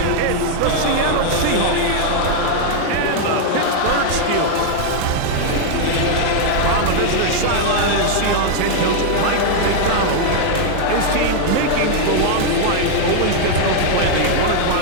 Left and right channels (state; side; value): different; both; correlation 0.00